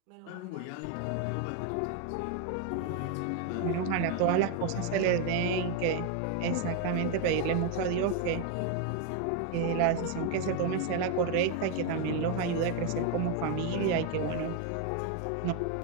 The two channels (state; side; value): different; both; correlation 0.01